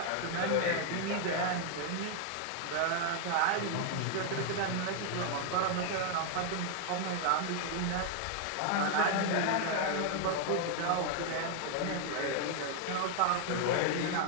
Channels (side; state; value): both; different; correlation 0.00